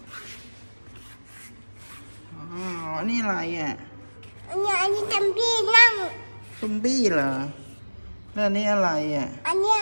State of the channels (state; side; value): inverted; both; correlation -1.00